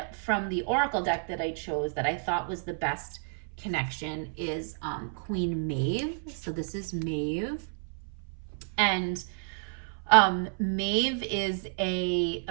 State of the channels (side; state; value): left; silent; 58 dB below the other